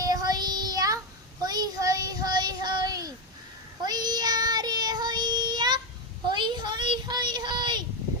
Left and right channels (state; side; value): normal; both; correlation 0.08